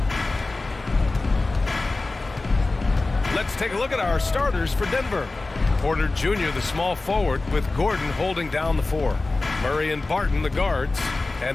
Let's take a look at our starters for Denver. Porter Jr., the small forward, with Gordon holding down the 4. Murray and Barton, the guards.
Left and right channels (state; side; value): quieter; right; 3.3 dB